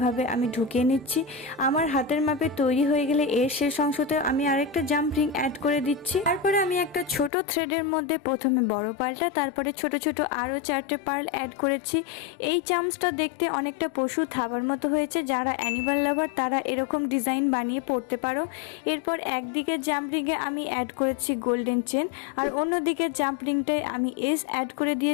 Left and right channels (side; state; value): right; drops out; at 7.3 s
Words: আমি ঢুকিয়ে নিচ্ছি। আমার হাতের মাপে তৈরি হয়ে গেলে এর শেষ অংশতে আমি আরেকটা জাম্প রিং অ্যাড করে দিচ্ছি। তারপরে আমি একটা ছোট থ্রেডের মধ্যে প্রথমে বড় পার্লটা, তারপরে ছোট ছোট আরও 4টে পার্ল অ্যাড করেছি। এই চামচটা দেখতে অনেকটা পশু থাবার মতো হয়েছে, যারা অ্যানিমাল লাভার তারা এরকম ডিজাইন বানিয়ে পরতে পারো। এরপর একদিকে জাম্প রিংয়ে আমি অ্যাড করেছি গোল্ডেন চেন, আর অন্যদিকে জাম্প রিংটায় আমি এস অ্যাড করে